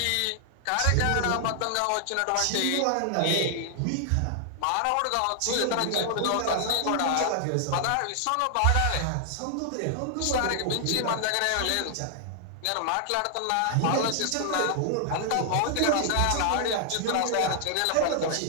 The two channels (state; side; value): different; both; correlation -0.01